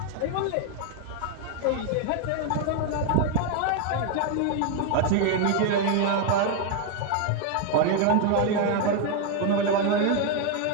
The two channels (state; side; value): different; both; correlation 0.01